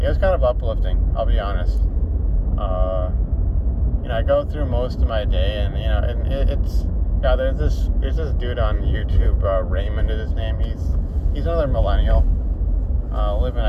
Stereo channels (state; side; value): identical; both; correlation 1.00